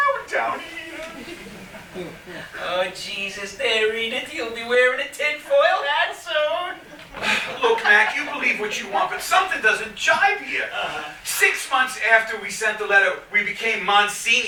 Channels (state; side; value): identical; both; correlation 1.00